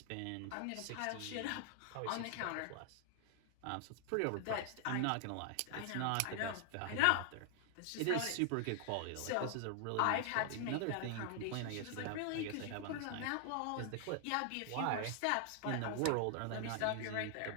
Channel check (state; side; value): different; both; correlation 0.00